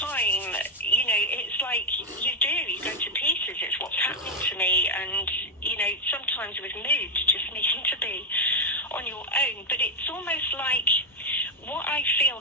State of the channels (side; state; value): both; normal; correlation 0.03